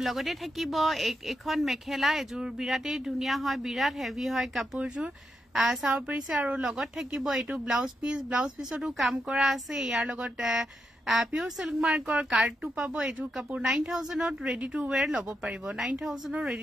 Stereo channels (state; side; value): normal; both; correlation 0.84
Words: লগতে থাকিব এখন মেখেলা এযোৰ বিৰাটেই ধুনীয়া হয় বিৰাট হেভি হয় কাপোৰযোৰ চাও পৰিছে আৰু লগত থাকিব এটো ব্লাউজ পিছতো কাম কৰা আছে ইয়াৰ লগত পিওৰ সিল্ক মাৰ্কৰ কাৰ্ডটো পাব এযোৰ কাপোৰ 9000ত ৰেডি টু ওয়্যাৰ লব পাৰিব 9000ৰ